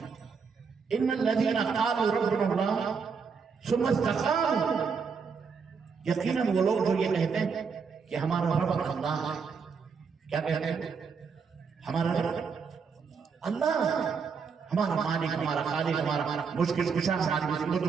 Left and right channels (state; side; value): quieter; left; 5.7 dB